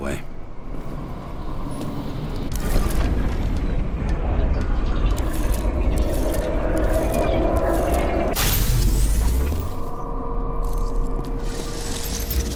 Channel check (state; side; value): identical; both; correlation 1.00